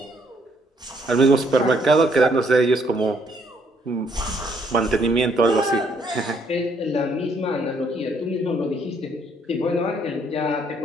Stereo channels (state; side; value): normal; both; correlation 0.68